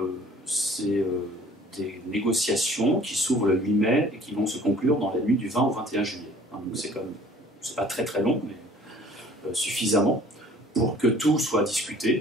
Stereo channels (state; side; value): normal; both; correlation 0.52